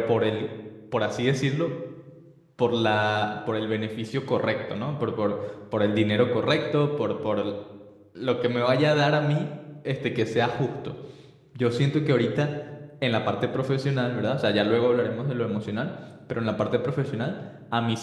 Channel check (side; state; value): both; identical; correlation 1.00